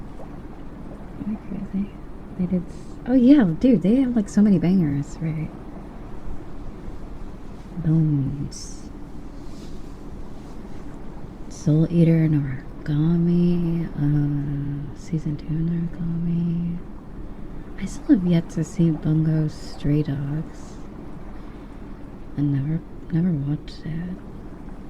Am I crazy? They did. Oh yeah, dude, they have like so many bangers, right? Bones. Soul Eater, Noragami, season 2 Noragami. I still have yet to see Bungo Stray Dogs. I never watched it.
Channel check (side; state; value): both; identical; correlation 1.00